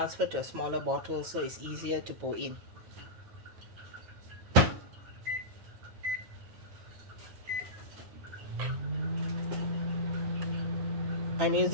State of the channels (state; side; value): late; left; 9.2 ms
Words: to a smaller bottle, so it's easier to pour in. I'm